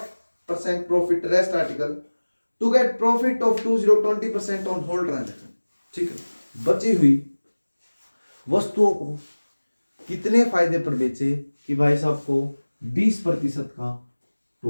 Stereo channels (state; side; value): inverted; both; correlation -1.00